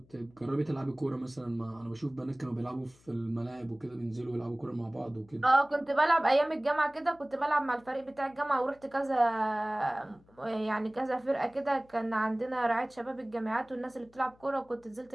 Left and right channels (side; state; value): left; noise; hum, 29 dB below the sound